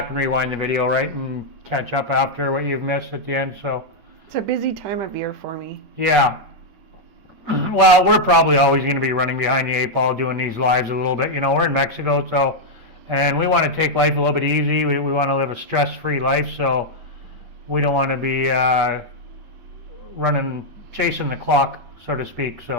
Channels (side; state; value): both; normal; correlation -0.02